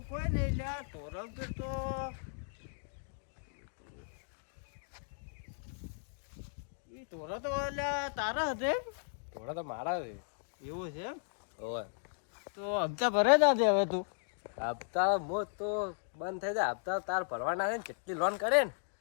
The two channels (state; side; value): silent; right; digital silence